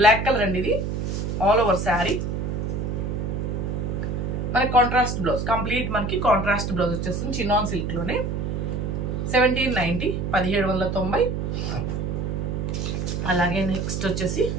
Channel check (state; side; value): noise; right; hum, 2 dB below the sound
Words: బ్లాక్ కలర్ అండి. ఇది ఆల్ ఓవర్ శారీ మనకి కాంట్రాస్ట్ బ్లౌజ్, కంప్లీట్ మనకి కాంట్రాస్ట్ బ్లౌజ్ వచ్చేస్తుంది చినాన్ సిల్క్ లోనే. 1790, 1790. అలాగే నెక్స్ట్ వచ్చేసి